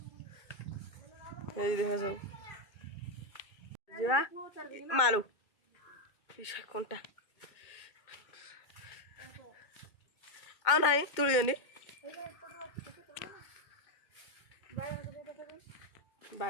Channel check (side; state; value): right; late; 2.2 ms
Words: देख सब मालू कंटा आ ना तुड़ी